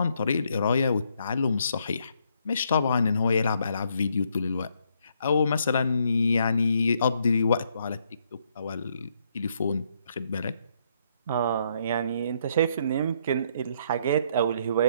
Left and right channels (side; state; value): both; inverted; correlation -0.72